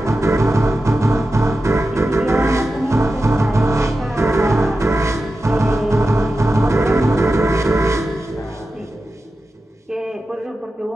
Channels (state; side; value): normal; both; correlation 0.92